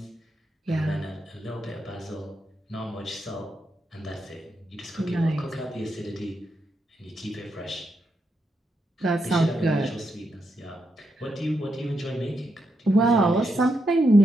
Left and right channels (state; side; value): normal; both; correlation 0.83